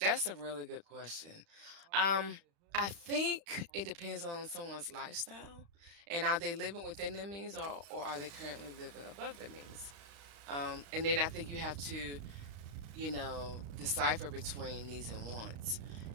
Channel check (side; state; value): left; late; 35 ms